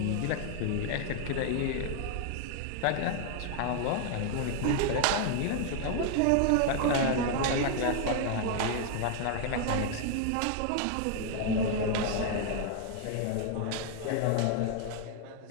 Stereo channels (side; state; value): both; different; correlation 0.00